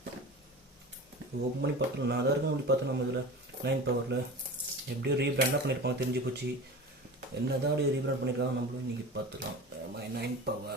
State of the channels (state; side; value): normal; both; correlation 0.33